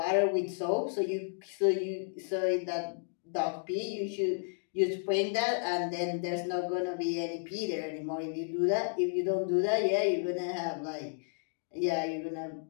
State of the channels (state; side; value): silent; right; digital silence